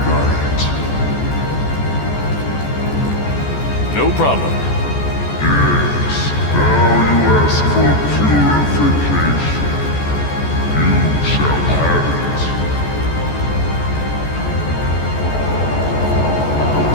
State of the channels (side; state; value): right; late; 14 ms